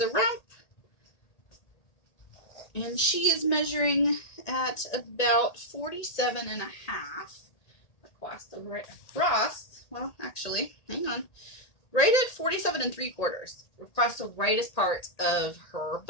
rump. And she is measuring at about 47 and a half well, actually, hang on. Right at 47 3/4 across the rightest part of her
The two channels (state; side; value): late; right; 1.9 ms